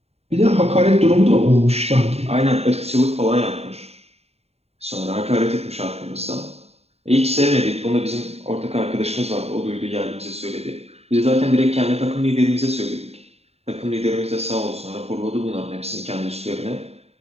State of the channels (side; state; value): left; late; 0.30 ms